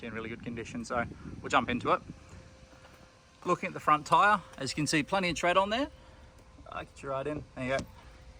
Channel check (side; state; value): both; identical; correlation 1.00